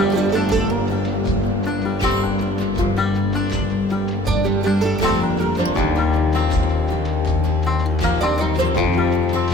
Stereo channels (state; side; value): normal; both; correlation 0.55